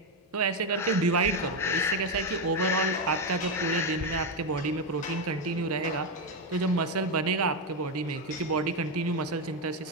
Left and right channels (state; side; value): normal; both; correlation 0.07